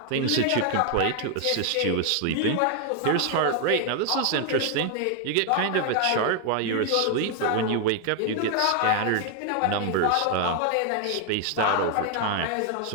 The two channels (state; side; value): different; both; correlation 0.01